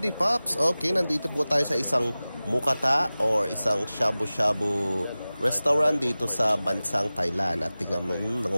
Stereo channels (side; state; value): both; inverted; correlation -0.97